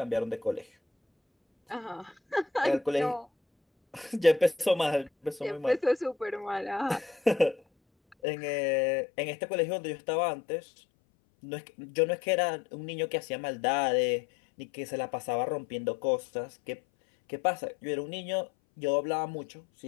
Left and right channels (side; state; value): right; drops out; at 8.2 s